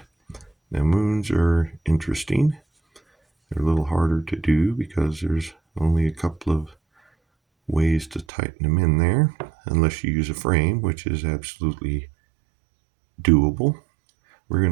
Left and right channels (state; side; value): drops out; left; at 8.2 s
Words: Now moons are interesting. They're a little harder to do because there's only a couple of ways to tighten them in there, unless you use a frame, which is absolutely doable. We're going